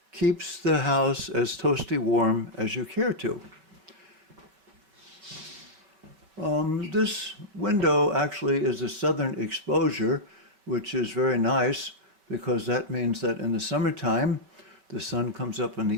keeps the house as toasty warm as you care to. This window actually is a southern exposure, which is very nice because that means that in the summertime, the sun comes up in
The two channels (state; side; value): late; left; 5.2 ms